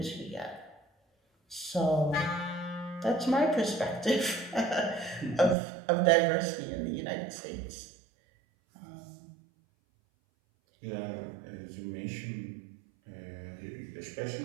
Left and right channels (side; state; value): left; drops out; at 5.6 s